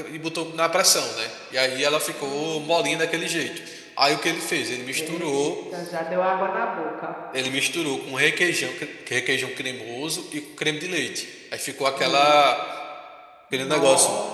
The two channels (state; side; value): identical; both; correlation 1.00